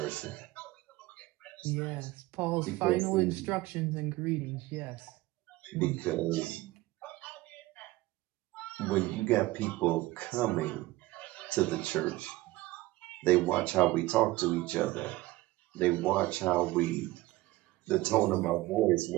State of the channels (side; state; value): left; quieter; 18.6 dB